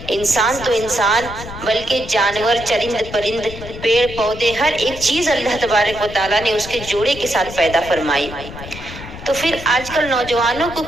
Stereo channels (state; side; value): noise; left; rumble, 13 dB below the sound